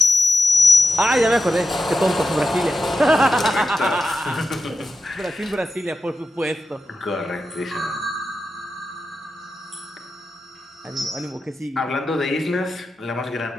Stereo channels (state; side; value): normal; both; correlation 0.90